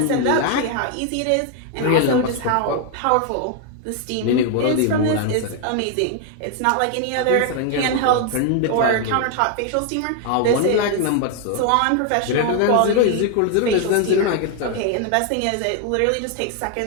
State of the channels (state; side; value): different; both; correlation 0.00